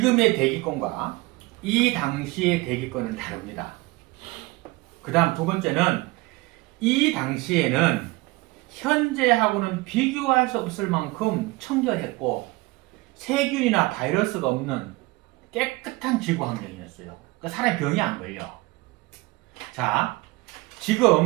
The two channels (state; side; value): quieter; left; 22.0 dB